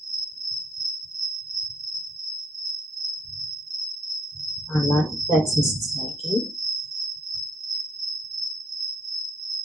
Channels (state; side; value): normal; both; correlation 0.67